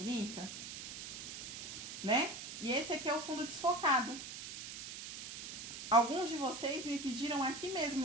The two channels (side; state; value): right; noise; hiss, 9 dB below the sound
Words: Né? E esse aqui é o fundo desfocado. Alguns de vocês me pediram aqui